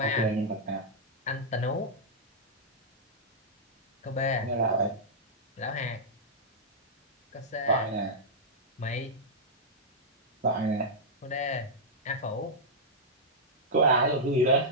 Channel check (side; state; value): both; normal; correlation -0.08